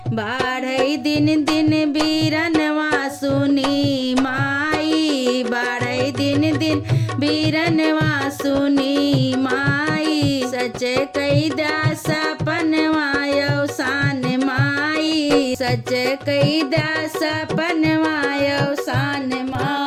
बाढ़ई दिन दिन बीरनवा सुनी माई, बाढ़ई दिन दिन बीरनवा सुनी माई। सच कही द्या सपनवा अवसान माई, सच कही द्या सपनवा अवसान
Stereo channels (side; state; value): both; identical; correlation 1.00